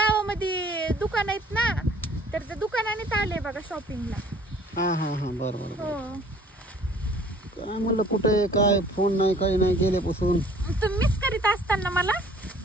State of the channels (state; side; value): normal; both; correlation 0.55